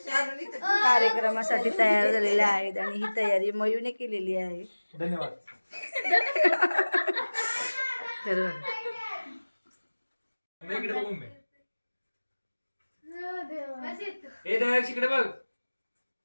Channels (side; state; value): both; inverted; correlation -1.00